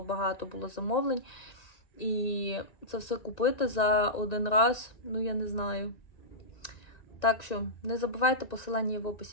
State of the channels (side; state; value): right; late; 1.9 ms